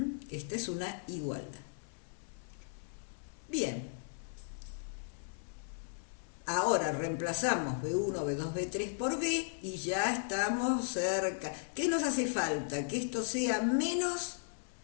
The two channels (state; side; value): silent; right; 54 dB below the other